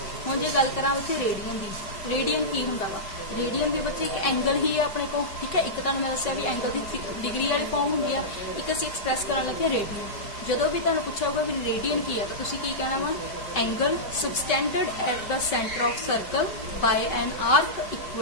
ਹੁਣ ਜੇ ਗੱਲ ਕਰਾਂ ਉੱਥੇ ਰੇਡੀਅਨ ਦੀ, ਰੇਡੀਅਨ ਕੀ ਹੁੰਦਾ ਵਾ, ਰੇਡੀਅਨ ਵੀ ਬੱਚੇ ਇੱਕ ਐਂਗਲ ਹੀ ਹੈ ਆਪਣੇ ਕੋਲ। ਠੀਕ ਹੈ, ਇੱਕ ਤੁਹਾਨੂੰ ਮੈਂ ਦੱਸਿਆ ਵੀ ਐਂਗਲ ਦੀ ਡਿਗਰੀ ਵਾਲੀ ਫਾਰਮ ਹੁੰਦੀ ਹੈ, ਇੱਕ ਅਸੀਂ ਐਕਸਪ੍ਰੈਸ ਕਰਨ ਲੱਗੇ ਰੇਡੀਅਨ। ਜਦੋਂ ਵੀ ਤੁਹਾਨੂੰ ਪੁੱਛਿਆ ਹੋਊਗਾ ਵੀ ਰੇਡੀਅਨ ਕੀ ਹੈ ਤਾਂ ਤੁਸੀਂ ਕੀ ਕਹਿਣਾ ਵਾ, angle subtended at the centre of circle by an arc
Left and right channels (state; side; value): late; right; 5.3 ms